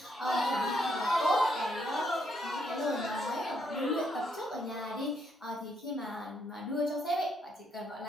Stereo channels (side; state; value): both; normal; correlation 0.74